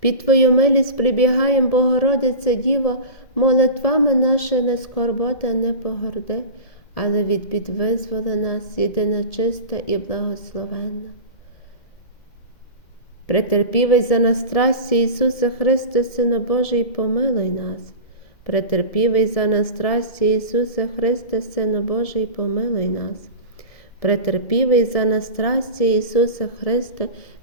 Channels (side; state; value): right; late; 2.1 ms